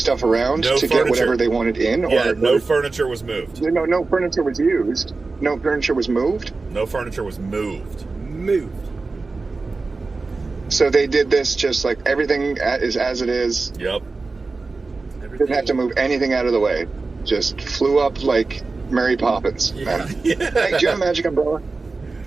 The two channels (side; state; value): left; quieter; 3.8 dB